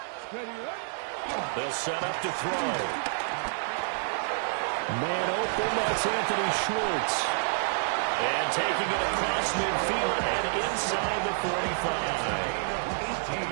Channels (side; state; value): left; silent; 59 dB below the other